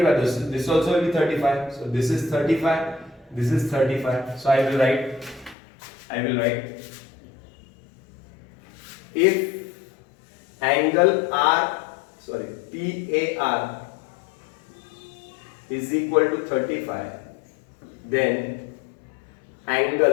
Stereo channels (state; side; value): drops out; right; at 5.6 s